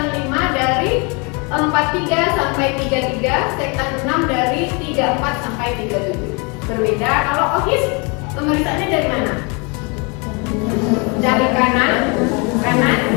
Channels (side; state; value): right; quieter; 31.7 dB